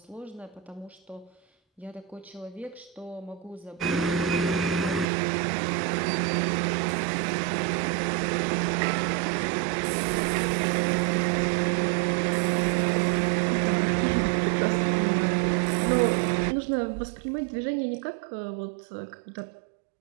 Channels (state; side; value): drops out; left; at 5.1 s